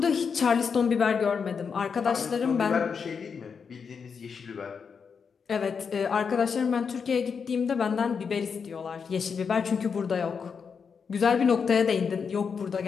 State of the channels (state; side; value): quieter; right; 6.1 dB